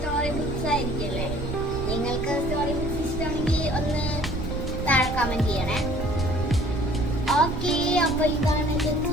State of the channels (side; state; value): right; noise; rumble, 6 dB below the sound